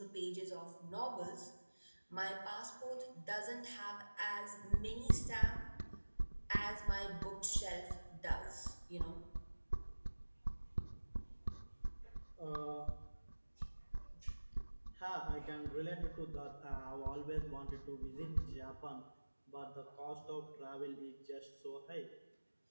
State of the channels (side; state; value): both; inverted; correlation -1.00